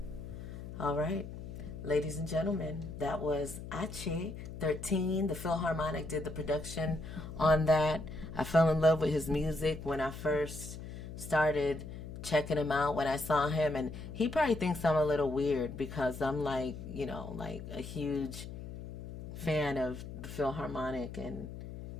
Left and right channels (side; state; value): left; noise; hum, 10 dB below the sound